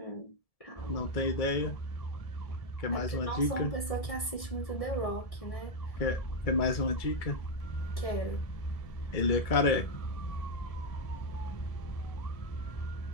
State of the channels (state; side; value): late; right; 1.7 ms